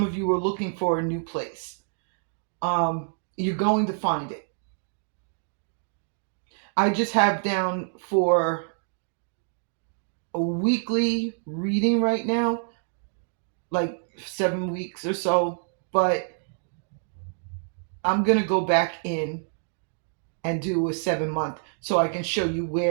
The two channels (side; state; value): left; silent; digital silence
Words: of you are looking for a new place. You're going to find it. I just have down for a weekly reading right now, like 7 weeks or so, but I'm going to go back in and do a 7-month so I can show you